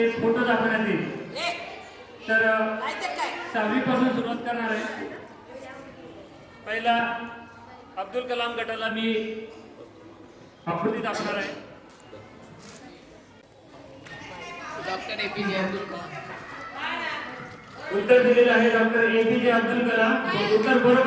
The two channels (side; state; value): both; identical; correlation 1.00